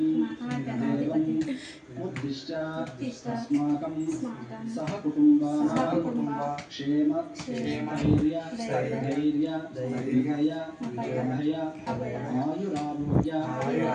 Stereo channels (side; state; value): both; identical; correlation 1.00